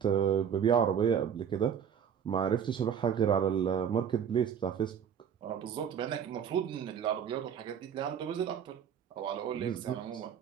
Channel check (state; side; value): quieter; left; 8.0 dB